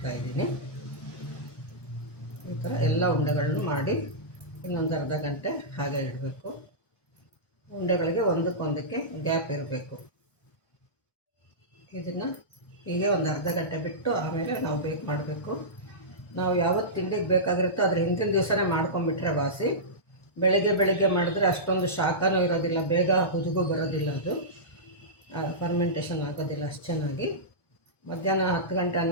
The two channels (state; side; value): late; right; 1.1 ms